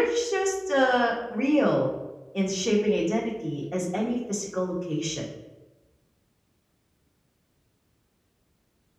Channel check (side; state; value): both; identical; correlation 1.00